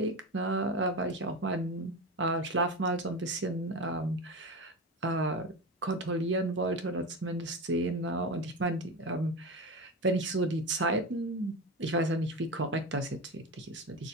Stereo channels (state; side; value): normal; both; correlation 0.22